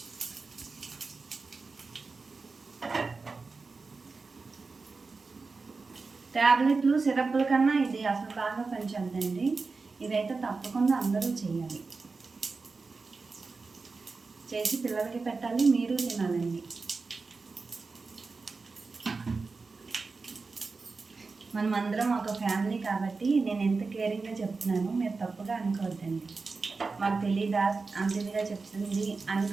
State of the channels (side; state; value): left; quieter; 4.2 dB